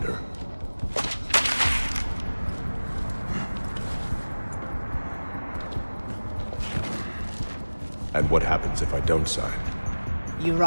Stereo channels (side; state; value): both; inverted; correlation -1.00